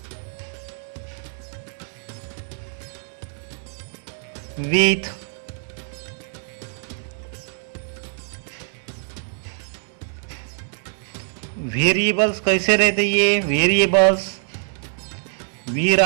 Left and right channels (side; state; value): left; silent; digital silence